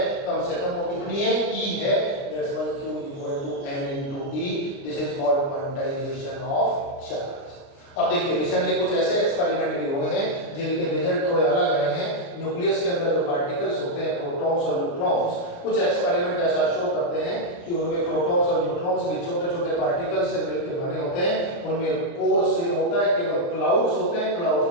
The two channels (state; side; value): late; right; 29 ms